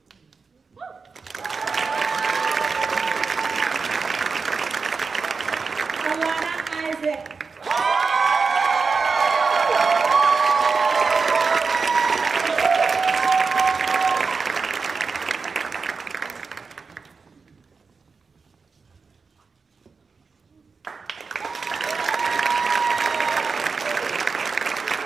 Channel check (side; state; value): left; quieter; 4.8 dB